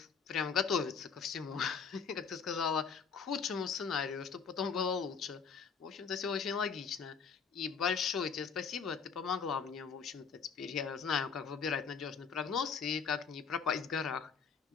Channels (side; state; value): right; quieter; 6.0 dB